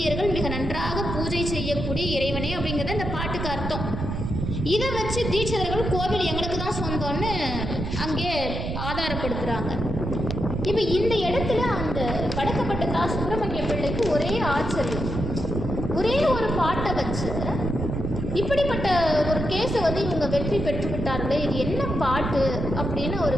மிக நன்றாக பூஜை செய்யக்கூடிய இறைவனே அப்படிங்கிறது இந்த பாட்டுக்கு அர்த்தம். இதை வச்சு தீட்சிதர்கள் கோவில் எங்களுக்கு தான் சொந்தம்னு அங்கே ஆதாரப்படுத்துகிறாங்க. இப்போ இந்த இடத்துல அந்த வடக்கப்பட்ட சுப்பிரமணிய பிள்ளைக்கு ஒரே ஆச்சரியம், ஒரே ஒரு பாட்டை வச்சு இப்படிப்பட்ட ஒரு கேஸை வந்து இவங்க வெற்றி பெற்று விட்டார்களே, இது என்ன பாட்டு அப்படின்னு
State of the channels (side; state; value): right; noise; rumble, 4 dB below the sound